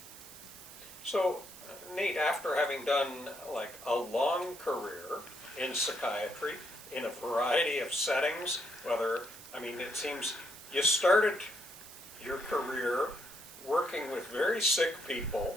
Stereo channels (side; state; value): right; noise; hiss, 16 dB below the sound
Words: So, Nate, after having done like a long career in psychiatry, in a variety of settings, it seems you started your career working with very sick